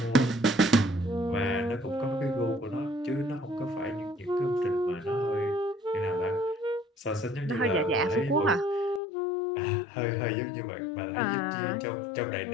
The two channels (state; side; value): drops out; right; at 9.0 s